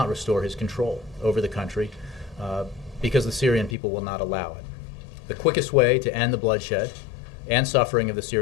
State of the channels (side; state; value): right; drops out; at 3.8 s